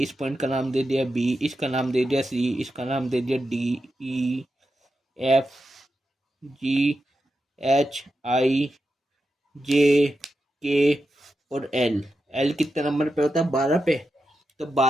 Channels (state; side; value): normal; both; correlation 0.89